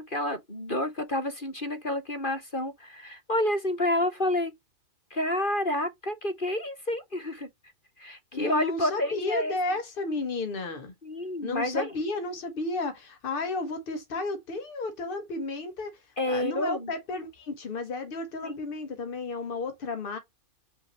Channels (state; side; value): late; right; 2.4 ms